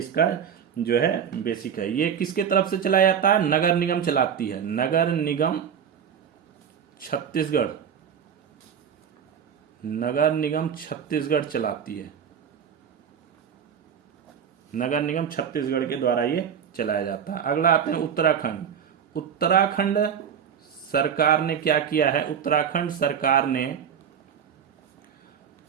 जो है बेसिक है। ये किसके तरफ से चलाया जाता है? नगर निगम चलाती है। नगर निगम छत्तीसगढ़ चलाती है। नगर निगम छत्तीसगढ़ के द्वारा ये चलाया जाता है। अगला आते हैं उत्तराखंड सरकार ने क्या किया है? उत्तराखंड सरकार ने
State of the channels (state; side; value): quieter; left; 7.9 dB